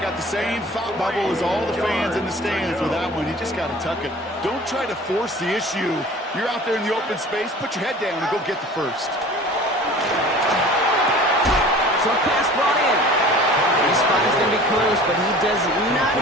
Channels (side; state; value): both; normal; correlation 0.44